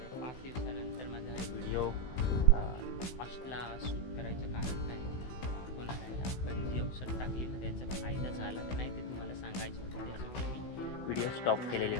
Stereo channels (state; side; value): late; right; 16 ms